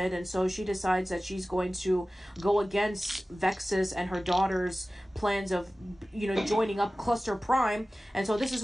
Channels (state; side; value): normal; both; correlation 0.96